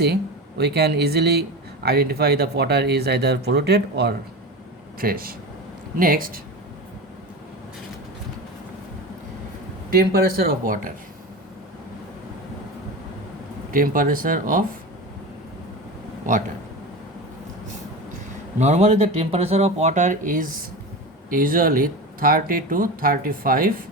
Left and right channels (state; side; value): normal; both; correlation 0.26